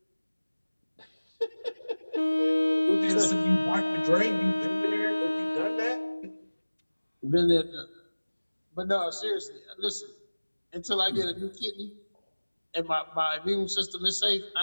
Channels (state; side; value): inverted; both; correlation -1.00